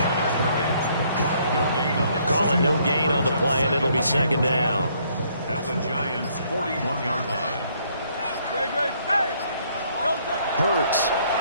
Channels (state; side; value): inverted; both; correlation -0.66